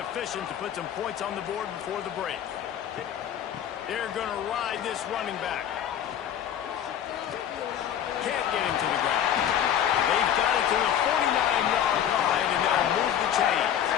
to put some points on the board before the break. They're going to ride this running back. Can't get him to the ground. They've got it to the 49-yard line, and they'll move the chains.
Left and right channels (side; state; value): right; quieter; 9.8 dB